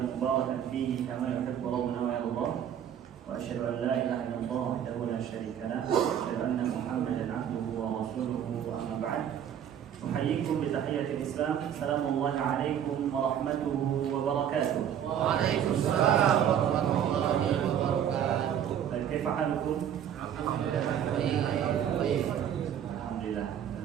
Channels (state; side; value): quieter; left; 9.4 dB